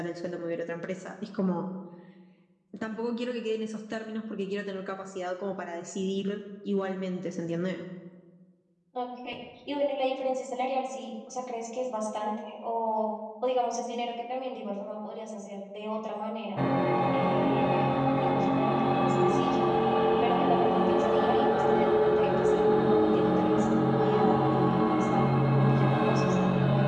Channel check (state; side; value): identical; both; correlation 1.00